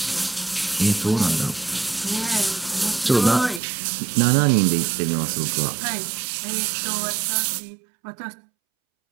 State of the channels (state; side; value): drops out; left; at 3.6 s